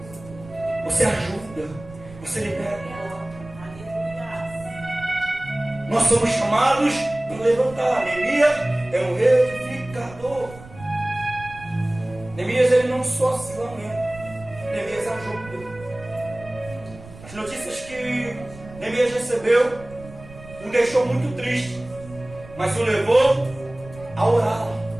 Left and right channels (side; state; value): right; noise; rumble, 18 dB below the sound